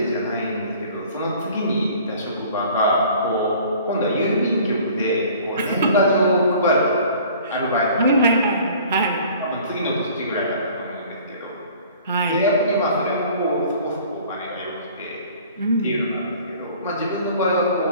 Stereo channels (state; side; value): inverted; both; correlation -0.50